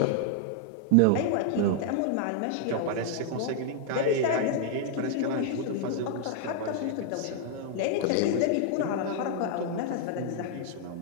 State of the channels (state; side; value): different; both; correlation -0.01